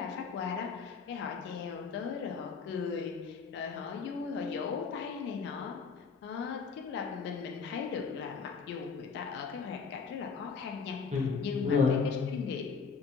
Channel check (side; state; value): right; quieter; 5.4 dB